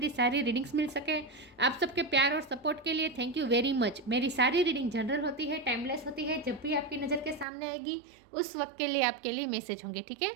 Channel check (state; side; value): drops out; left; at 7.5 s